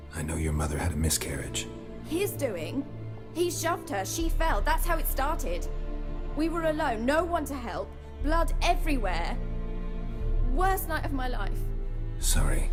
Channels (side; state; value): both; identical; correlation 1.00